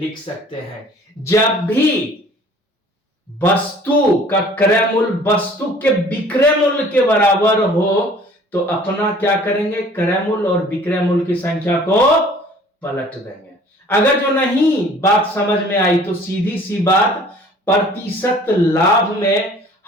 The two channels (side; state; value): both; normal; correlation 0.51